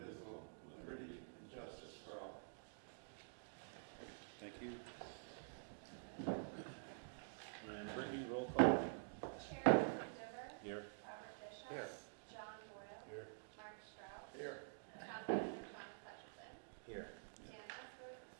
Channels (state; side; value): silent; left; digital silence